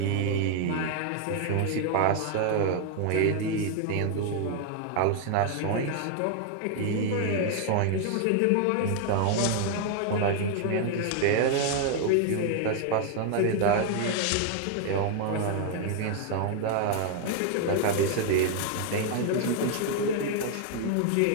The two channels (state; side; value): different; both; correlation 0.00